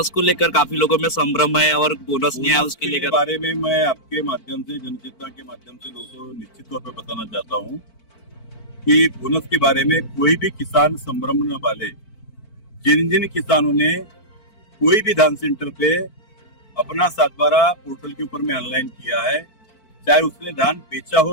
को लेकर काफी लोगों में संभ्रम है और बोनस नहीं आया उसके लेकर बारे में मैं आपके माध्यम से जनचेतना के माध्यम से लोगों को निश्चित तौर पर बताना चाहता हूँ कि बोनस के बारे में कोई भी किसान संभ्रम न वाले। जिन जिन किसानों ने कोई भी धान सेंटर पे अपना 7/12 पोर्टल के ऊपर में ऑनलाइन किया है, चाहे उसने धान बेचा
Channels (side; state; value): right; late; 4.5 ms